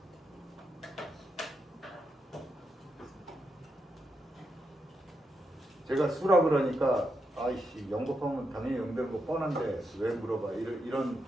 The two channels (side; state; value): both; normal; correlation 0.84